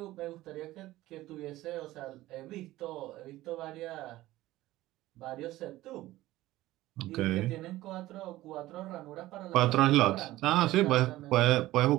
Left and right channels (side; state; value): left; quieter; 16.6 dB